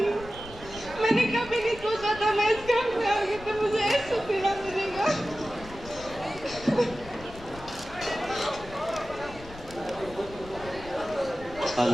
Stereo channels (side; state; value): left; noise; rumble, 16 dB below the sound